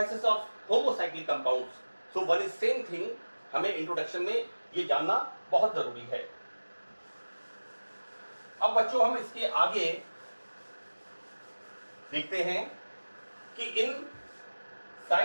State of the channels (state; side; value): inverted; both; correlation -1.00